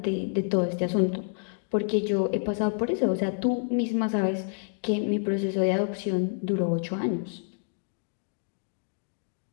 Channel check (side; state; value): right; silent; digital silence